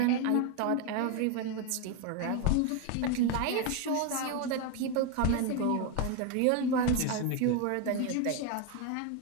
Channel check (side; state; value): both; different; correlation 0.02